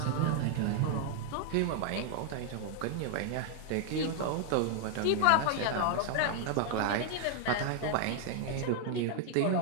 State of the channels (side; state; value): both; different; correlation 0.00